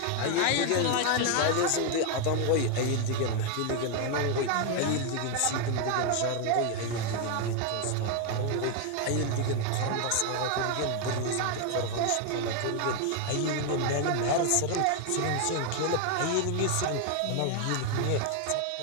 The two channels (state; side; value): different; both; correlation 0.01